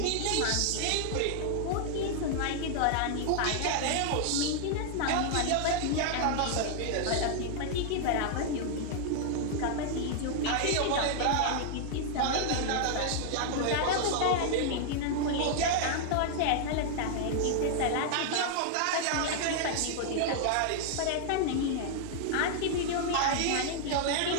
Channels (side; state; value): both; different; correlation -0.01